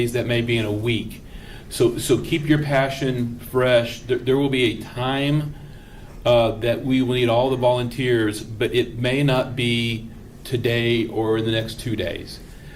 that may be in a week. So keep your passion fresh. There will be a time that we will need all the volunteers, but it may not be today or in the next 2 days.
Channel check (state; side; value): identical; both; correlation 1.00